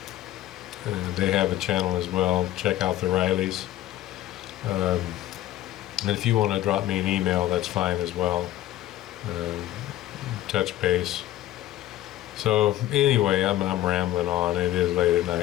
They have a channel as well. Check out the Rileys. And if you want to drop me an email, that's fine as well. Touch base. So anyway, I'm rambling on. It is late at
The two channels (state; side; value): quieter; right; 14.0 dB